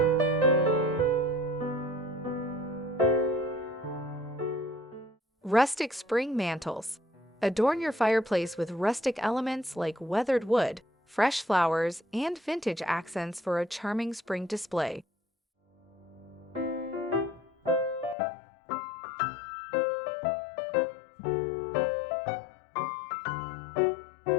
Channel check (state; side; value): drops out; right; at 18.2 s